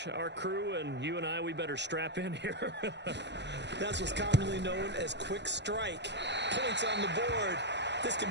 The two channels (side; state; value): left; late; 0.51 ms